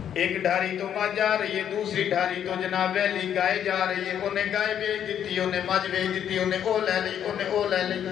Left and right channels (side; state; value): right; quieter; 9.5 dB